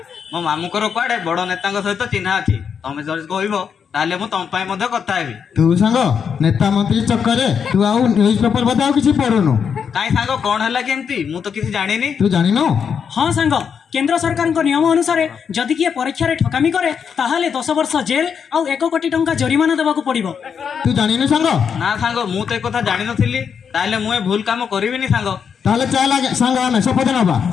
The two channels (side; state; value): right; quieter; 6.9 dB